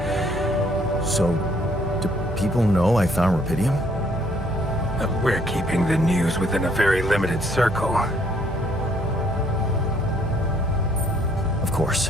So, do people know I found Rupidium? We're keeping the news within a very limited circle. Of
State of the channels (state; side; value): normal; both; correlation 0.65